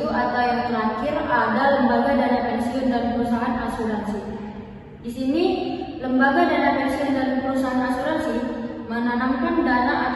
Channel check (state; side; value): identical; both; correlation 1.00